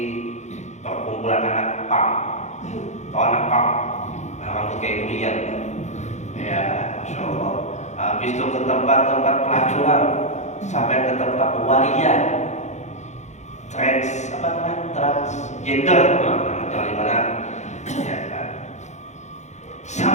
perkumpulan anak pang, atau anak pang, rambut kayak Urian, ya, masya Allah. Habis itu ke tempat-tempat pelacuran, sampai ke tempat waria, transgender, jangan mana, ya kan.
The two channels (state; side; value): late; right; 0.34 ms